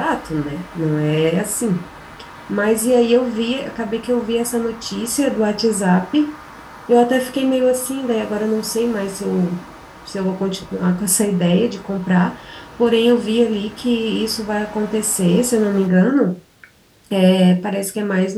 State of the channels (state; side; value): identical; both; correlation 1.00